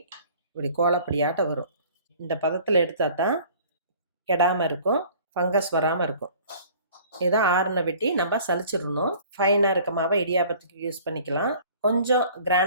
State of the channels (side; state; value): both; inverted; correlation -0.50